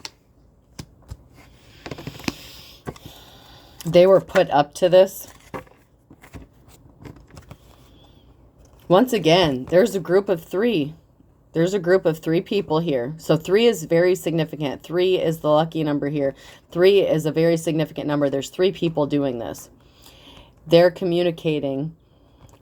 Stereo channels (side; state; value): both; identical; correlation 1.00